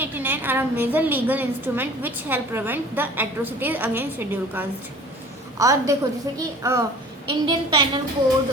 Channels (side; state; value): both; normal; correlation 0.46